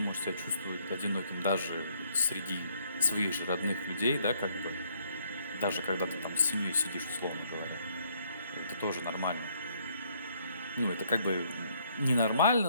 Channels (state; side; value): inverted; both; correlation -0.68